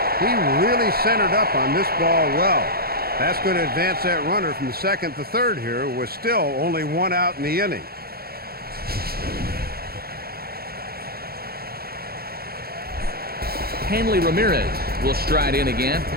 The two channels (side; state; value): left; late; 0.44 ms